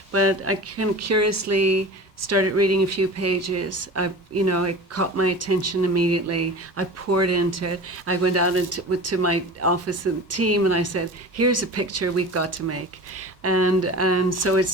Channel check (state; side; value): normal; both; correlation 0.35